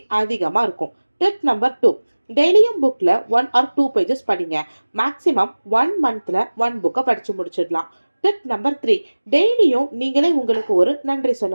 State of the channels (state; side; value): inverted; both; correlation -1.00